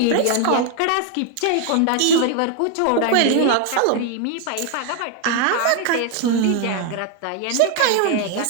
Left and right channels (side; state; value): both; different; correlation 0.01